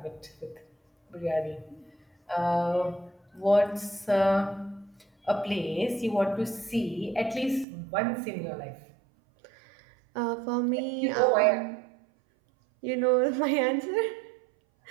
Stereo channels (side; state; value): left; drops out; at 7.7 s